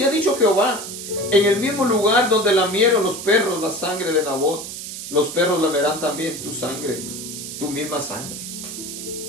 ha dicho Jehová, en el mismo lugar donde lamieron los perros la sangre de Nabot, los perros lamerán también tu sangre, tu misma sangre.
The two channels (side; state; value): right; noise; hiss, 9 dB below the sound